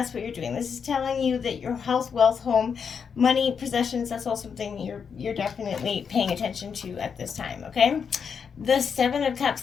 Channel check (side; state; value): right; quieter; 6.5 dB